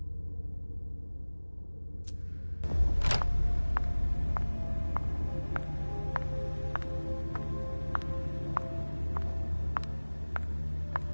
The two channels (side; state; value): both; inverted; correlation -1.00